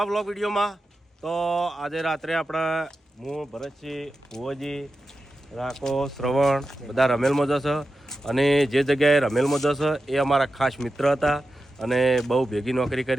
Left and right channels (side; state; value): both; normal; correlation 0.91